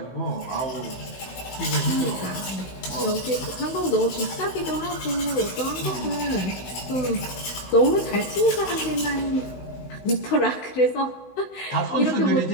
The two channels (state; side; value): late; right; 16 ms